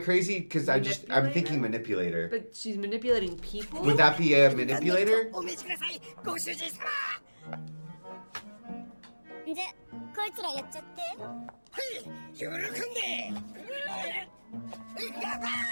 Because I'm thinking manipulator. But she's manipulating people. Would that be a manipulator? お召しくださいご主人様じゃこいつらやっちゃってはい喜んで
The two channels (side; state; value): both; inverted; correlation -1.00